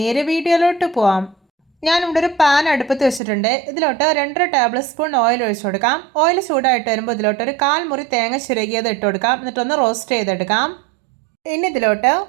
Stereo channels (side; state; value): left; drops out; at 3.2 s